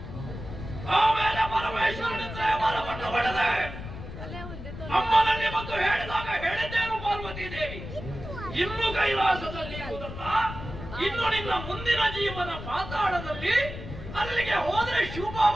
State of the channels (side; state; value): left; noise; rumble, 10 dB below the sound